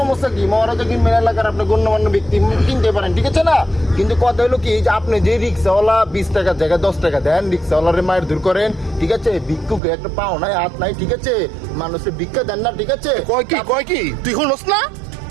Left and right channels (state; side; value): drops out; left; at 9.8 s